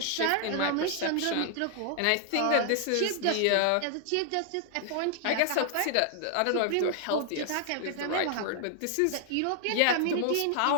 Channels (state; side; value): different; both; correlation 0.00